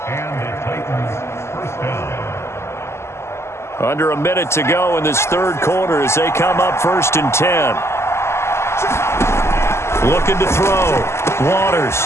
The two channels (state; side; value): late; right; 0.13 ms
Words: Under a minute to go in this third quarter as they come up 1st and 10. Looking to throw.